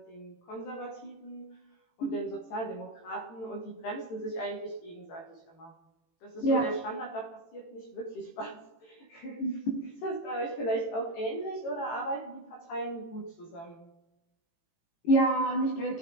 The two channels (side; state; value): right; late; 18 ms